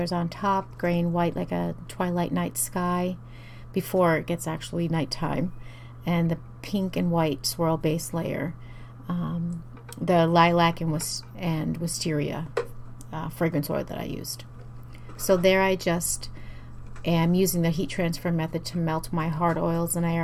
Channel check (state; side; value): identical; both; correlation 1.00